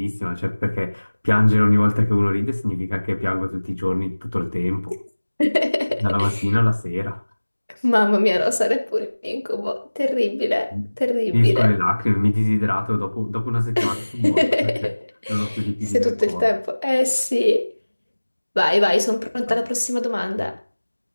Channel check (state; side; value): inverted; both; correlation -1.00